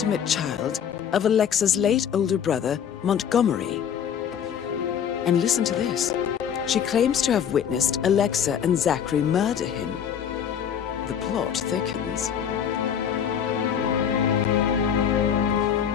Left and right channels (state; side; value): quieter; right; 8.4 dB